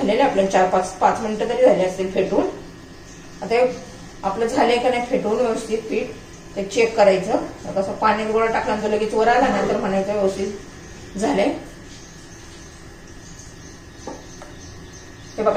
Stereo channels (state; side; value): identical; both; correlation 1.00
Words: आपल्याला 4-5 मिनिटं तरी झाले असतील फेटून. आता आपलं झालंय का नाही फेटून व्यवस्थित पीठ ते चेक करायचं. कसं पाण्यात गोळा टाकल्यानंतर लगेच वर आला ना तर म्हणायचं व्यवस्थित झालंय. हे